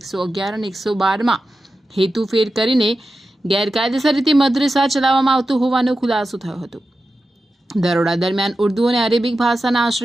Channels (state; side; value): normal; both; correlation 0.92